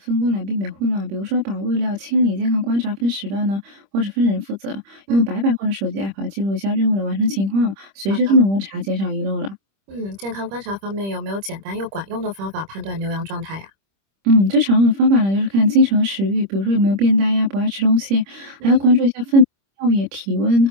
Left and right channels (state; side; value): late; left; 25 ms